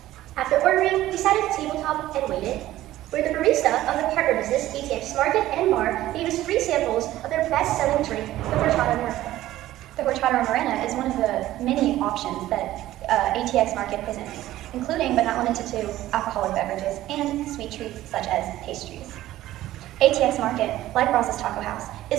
After ordering, we sat at the tabletop and waited, where the barista of the partner business, ATX Market and Bar, gave us free samples of their best-selling drink, the horchata morena. The horchata morena is one of the many options that ATX Market presents, including but not limited to alcoholic beverages and sweet treats such as pastries. ATX Market, like Brazas Taco House,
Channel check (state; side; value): quieter; left; 14.8 dB